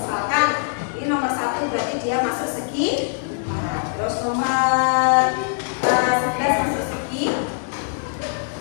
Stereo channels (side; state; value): right; silent; 64 dB below the other